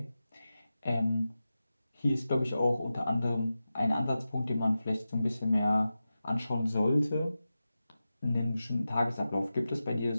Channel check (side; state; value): both; inverted; correlation -0.93